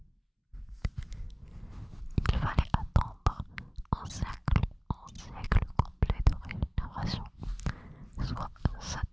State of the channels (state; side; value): identical; both; correlation 1.00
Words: il fallait attendre un siècle complet de régénération, soit 7